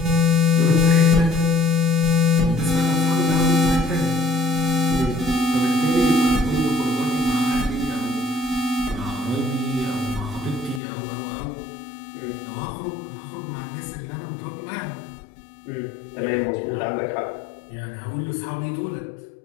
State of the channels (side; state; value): right; drops out; at 10.8 s